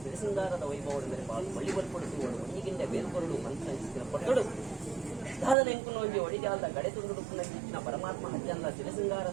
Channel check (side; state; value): left; drops out; at 5.6 s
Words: ಸಿರಿಸಿಂಗಾರದ ವೈಭವದ ಮೇಲೆ ಬಾಳು ಬಳ್ಳಿ ಬಲ್ಪಡುತ್ತುಗಳು ಒಣಗಿಂದ ಬೇರ್ಪೊರಡು ಮಂತ್ರ ಪಟ್ಟಡು ಸಾಧನ ಎಂಕುನ ಒಂಜಿ ಒಡಿಜಾಲದ ಗಡೆ ತುಂಡು ಕಿಚ್ಚಿನ ಪರಮಾತ್ಮ ಹಜ್ಜಂದ